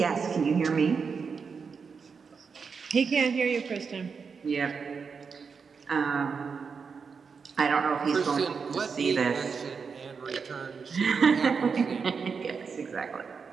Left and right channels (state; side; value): quieter; left; 5.6 dB